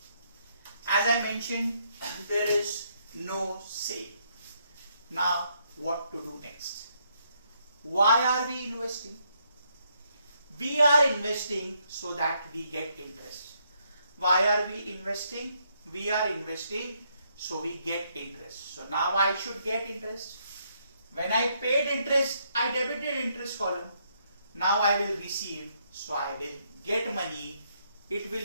As I mentioned, there is no sale. Now what to do next? Why are we investing? We are investing so that we get interest. Why are we investing? We are investing so we get interest. So now I should get interest. When I paid interest, I debited interest column. Now I will receive, so I will get money. It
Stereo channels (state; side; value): inverted; both; correlation -0.74